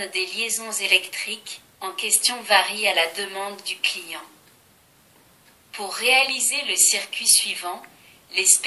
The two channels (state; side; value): identical; both; correlation 1.00